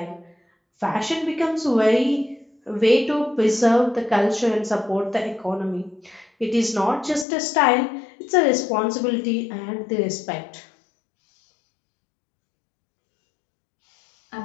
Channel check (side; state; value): right; drops out; at 7.2 s